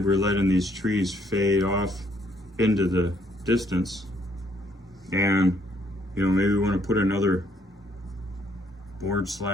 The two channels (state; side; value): normal; both; correlation 0.68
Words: we're letting these trees fade off into the distance, and maybe we want to put another board